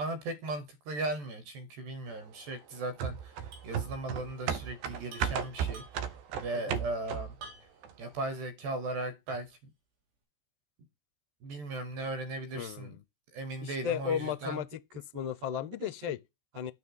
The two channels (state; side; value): late; left; 14 ms